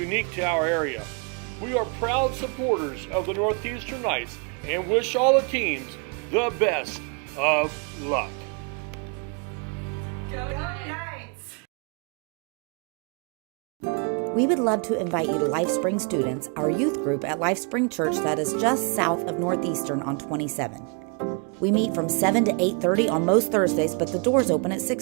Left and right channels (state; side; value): quieter; left; 37.1 dB